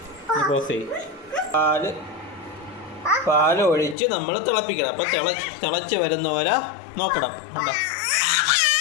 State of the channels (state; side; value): drops out; right; at 4.0 s